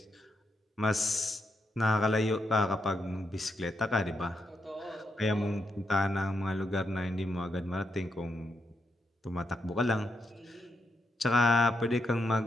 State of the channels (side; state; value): both; normal; correlation 0.82